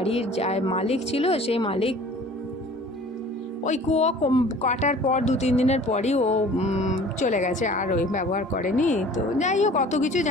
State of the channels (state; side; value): normal; both; correlation 0.47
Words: যা মালিক ছিল, সেই মালিক ওই কুয়ো কাটার পর 2-3 দিনের পরই ও চলে গেছে, আর ওই ব্যবহার করেনি। তো যাই হোক, অত কিছু